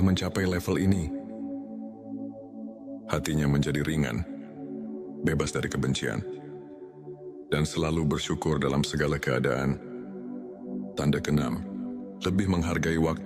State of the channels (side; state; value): both; identical; correlation 1.00